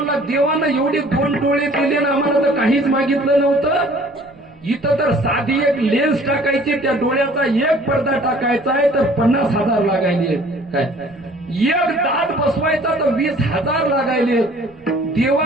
देवानं एवढे 2 डोळे दिले ना आम्हाला तर काहीच मागितलं नव्हतं. इथं तर साधी एक लेन्स टाकायची, त्या डोळ्याचा एक पडदा टाकायचा आहे तर 50,000 लागायले काय. एक दात बसवायचा तर 20,000 लागायले.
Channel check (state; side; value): noise; right; rumble, 29 dB below the sound